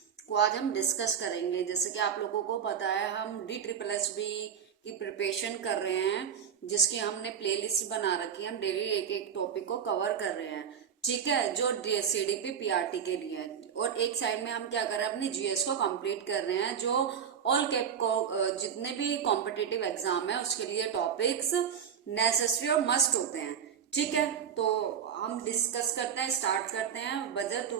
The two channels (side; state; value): left; quieter; 8.0 dB